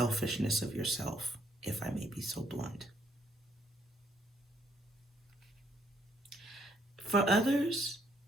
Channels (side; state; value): both; normal; correlation 0.70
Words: of yourself, if I may be so blunt. For others,